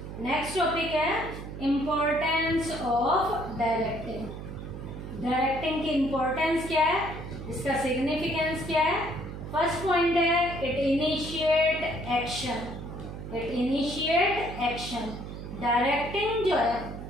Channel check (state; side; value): noise; right; hum, 9 dB below the sound